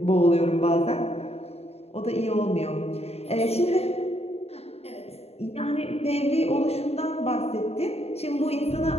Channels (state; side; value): late; right; 0.30 ms